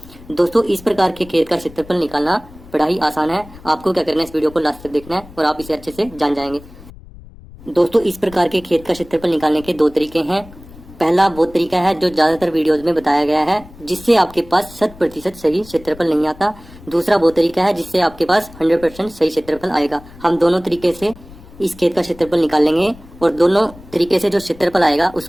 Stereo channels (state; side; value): noise; left; rumble, 20 dB below the sound